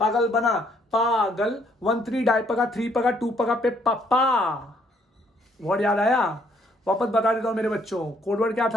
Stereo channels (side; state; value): both; normal; correlation 0.68